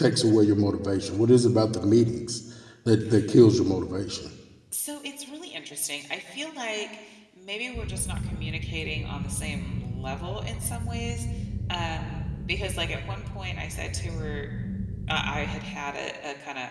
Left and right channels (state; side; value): identical; both; correlation 1.00